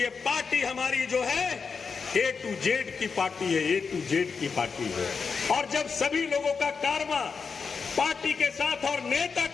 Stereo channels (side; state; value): right; quieter; 5.4 dB